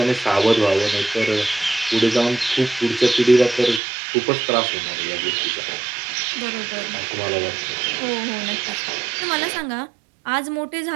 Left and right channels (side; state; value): left; drops out; at 3.8 s